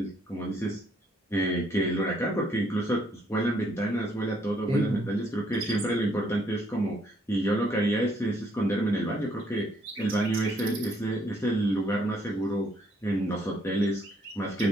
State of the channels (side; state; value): both; normal; correlation 0.69